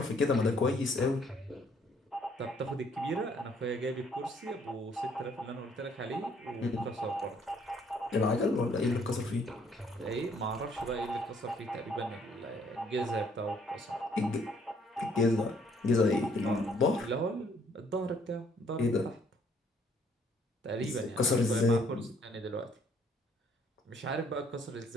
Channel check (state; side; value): normal; both; correlation 0.64